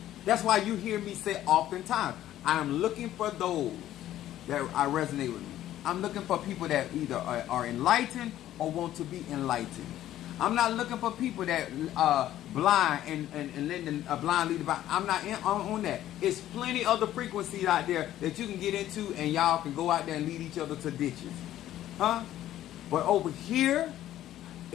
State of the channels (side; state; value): right; quieter; 13.0 dB